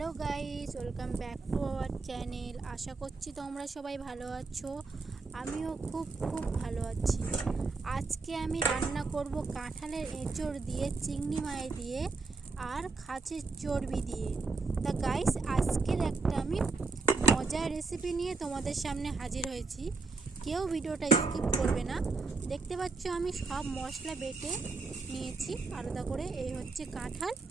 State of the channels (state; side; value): quieter; left; 4.1 dB